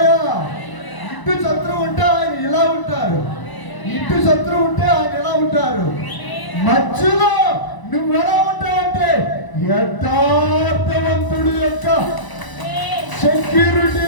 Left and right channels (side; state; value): right; late; 1.0 ms